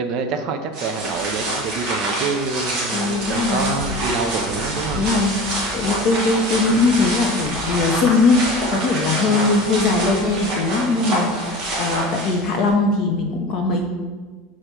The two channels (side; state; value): both; normal; correlation 0.36